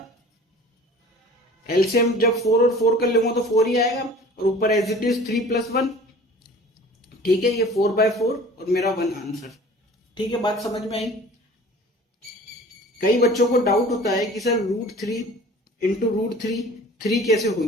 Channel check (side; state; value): both; normal; correlation 0.45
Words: एलसीएम जब 4 और 4 कर लूंगा तो 4 ही आएगा, और ऊपर एज इट इज 3 + 1। ठीक है, ये 4/4 और मेरा 1 आंसर। ठीक है, बात समझ में आई? कई बच्चों को डाउट होता है कि सर √3 इंटू √3 3 कैसे हो